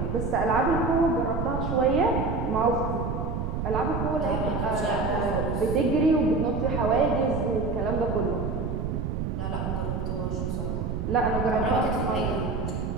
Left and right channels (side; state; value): right; noise; rumble, 2 dB below the sound